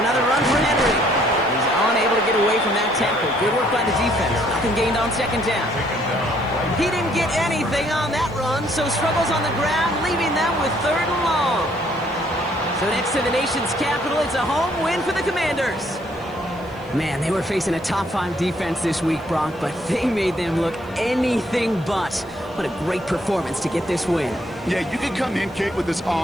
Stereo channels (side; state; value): left; noise; hiss, 30 dB below the sound